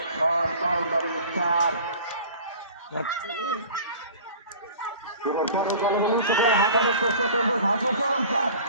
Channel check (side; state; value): both; inverted; correlation -0.43